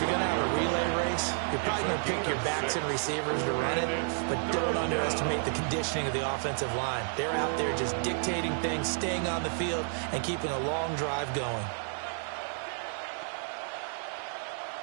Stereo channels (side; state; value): left; silent; 57 dB below the other